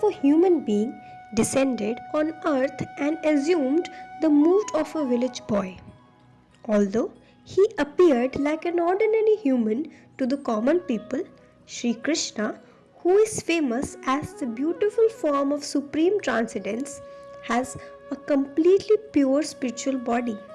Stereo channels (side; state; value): both; identical; correlation 1.00